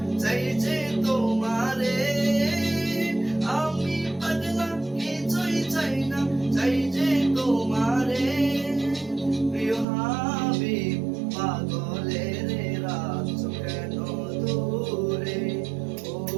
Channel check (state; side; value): drops out; left; at 9.9 s